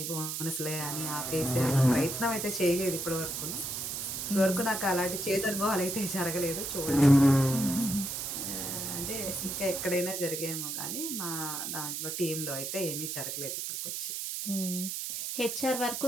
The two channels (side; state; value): right; noise; hiss, 4 dB below the sound